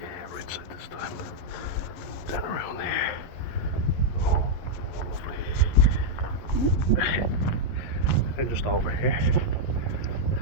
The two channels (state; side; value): late; right; 11 ms